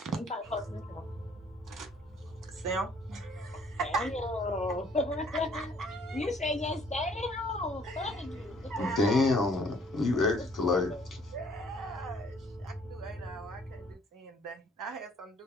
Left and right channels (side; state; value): both; normal; correlation 0.60